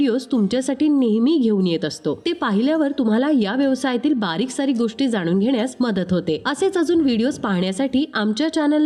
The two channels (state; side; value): identical; both; correlation 1.00